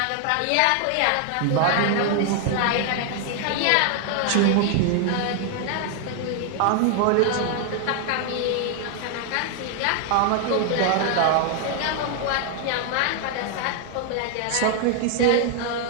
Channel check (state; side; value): different; both; correlation 0.00